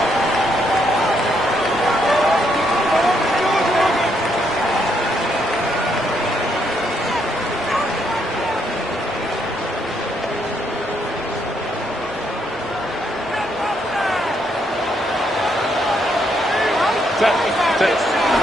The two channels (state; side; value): normal; both; correlation 0.75